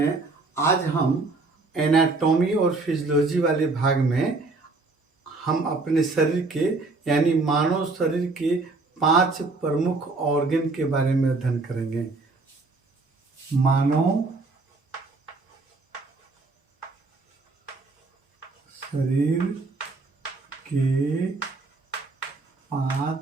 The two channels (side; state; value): left; quieter; 3.6 dB